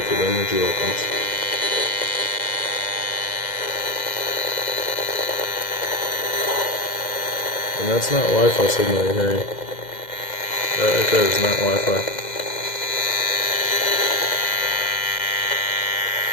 energy weapons. And that's not Wi-Fi signal you're hearing. That right there is not Wi-Fi.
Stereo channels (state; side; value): late; right; 2.0 ms